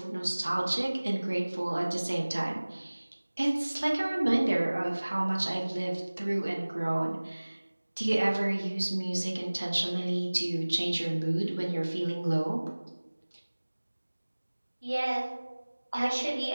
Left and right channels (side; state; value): both; inverted; correlation -1.00